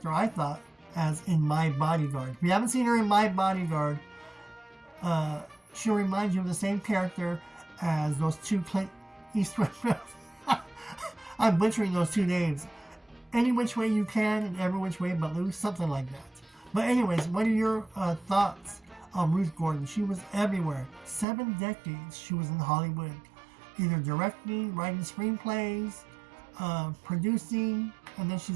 I thought as in My Bodyguard. If you haven't seen her in My Bodyguard, she'll remind you of the same character as those 2 Clint Eastwood films. I'm butchering those 2 names. Any Which Way You Can and Every Which Way But Loose, something like that. But anyways, what are your thoughts on Ruth Gordon? She was everywhere. 7 decades she was in Hollywood, either directing, writing screenplays, producing, and then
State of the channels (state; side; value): drops out; left; at 21.2 s